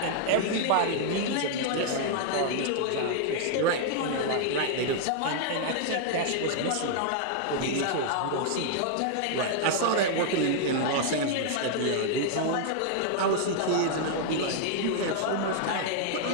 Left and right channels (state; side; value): different; both; correlation 0.00